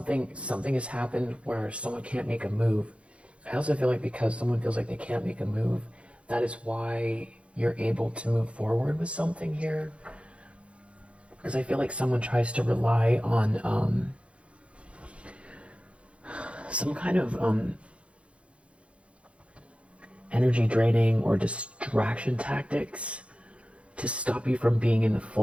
has happened where someone can't make a move. I also feel like because someone feels like they can't make a move, that is why you're able to move forward with something here. Because I feel like someone tries to rely on some kind of energy draining or distraction tactics to stop you from being in the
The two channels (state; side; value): late; left; 0.060 ms